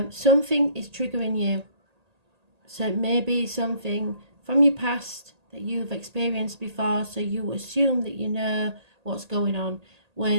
Something is triggering you. So it may be something from your past that you've experienced before, so you assume that you know what's going on,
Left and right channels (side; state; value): left; late; 1.8 ms